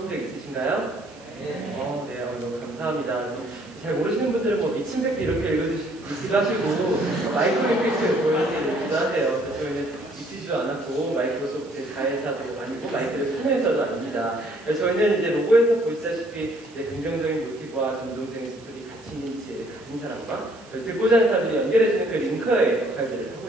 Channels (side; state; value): right; noise; hiss, 25 dB below the sound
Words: 적 있으신가요? 네. 너무 감사합니다. 잘 모르시는 분들은 뭐 미친백도 이렇게 읽기도 하시고 마이크로이펙트 보여드리기도 하세요. 그래서 저희는 미치지도 않았고 마이크로소프트 자회사도 아니고 마이크를 판매사도 아닙니다. 저희는 이제 로고에서 보시다시피 긍정적인 모티브와 감동적인 스토리 가치 있는 지혜를 가진 사람과 듣고자 하는 사람들이 연결해주는 그 링커의 역할들을